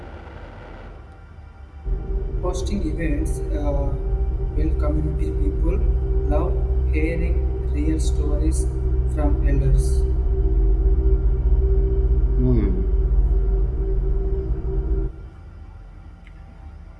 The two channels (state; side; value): identical; both; correlation 1.00